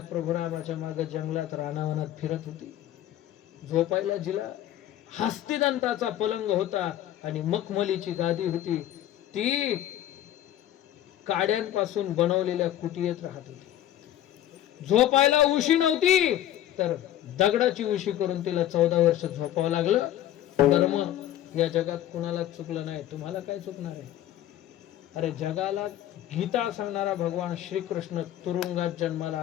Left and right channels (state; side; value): quieter; right; 12.4 dB